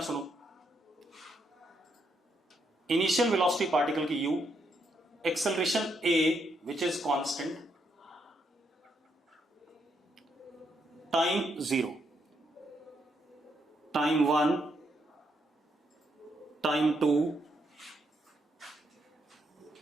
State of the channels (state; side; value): normal; both; correlation 0.77